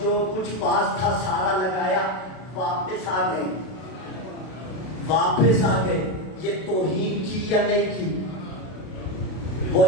کچھ پاس تھا سارا لگایا، واپس آ گئے، واپس آ گئے۔ یہ توہین کی یا نہیں کی؟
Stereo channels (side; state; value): right; late; 32 ms